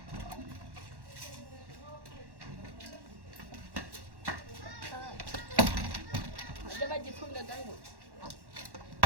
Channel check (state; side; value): late; left; 1.1 ms